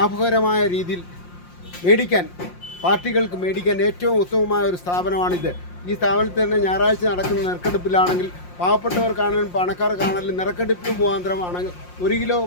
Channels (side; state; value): right; late; 5.7 ms